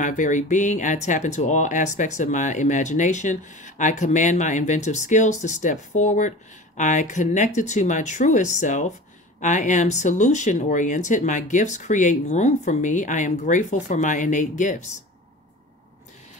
very being. I tap into all aspects of my imagination. I command my inventive skills to step forward. I connected to my truest self. I am solution oriented. My gifts create room for me. I am grateful for my innate gifts.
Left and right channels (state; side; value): normal; both; correlation 0.36